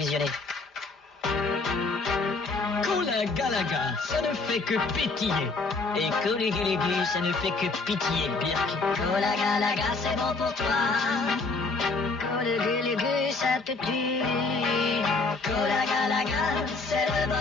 Cola Galaga, ça ne fait que pétiller. Et Colugulugu, ça ne fait que pitié, Birk. Cola Galaga, c'est bon pour toi. Colugulugu, ça te tue. Cola Galaga, c'est le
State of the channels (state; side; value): quieter; right; 3.8 dB